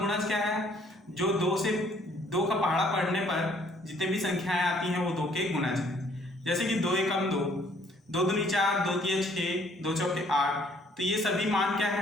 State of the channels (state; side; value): normal; both; correlation 0.62